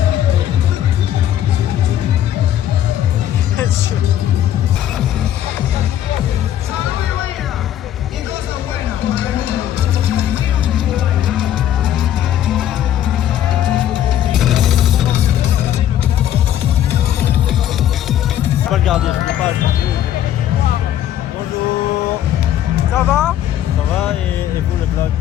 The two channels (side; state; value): right; quieter; 11.3 dB